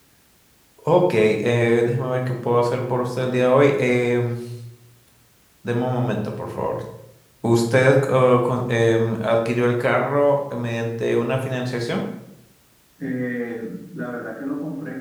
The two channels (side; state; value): both; identical; correlation 1.00